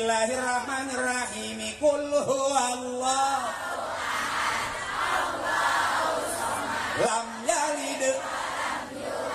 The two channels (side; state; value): both; identical; correlation 1.00